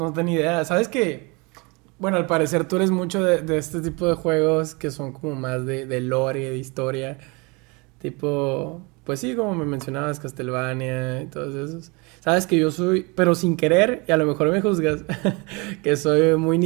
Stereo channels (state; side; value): quieter; left; 28.3 dB